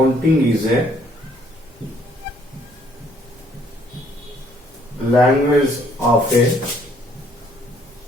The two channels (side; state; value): both; normal; correlation 0.64